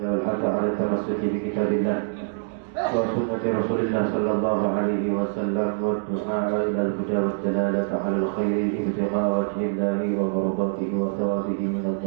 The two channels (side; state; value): left; silent; digital silence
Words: wal hatha 'ala tamassuki bi kitabillah wa sunnati Rasulillah sallallahu alaihi wasallam wa du'a ila al-huda wa dalalata 'ala al-khairi ibtigha'a wajhillahi wa mardatihi wa thawabihi min